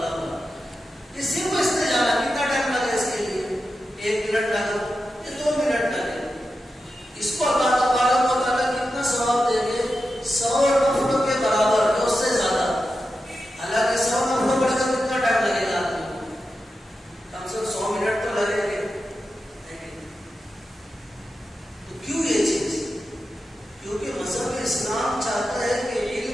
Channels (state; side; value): normal; both; correlation 0.90